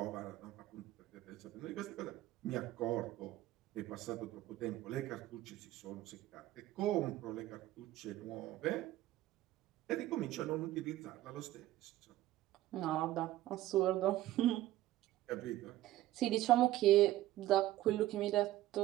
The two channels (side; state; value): left; quieter; 15.2 dB